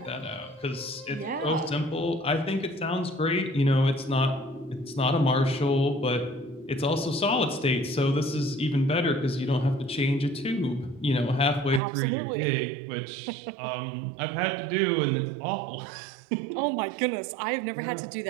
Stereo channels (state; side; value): drops out; left; at 11.8 s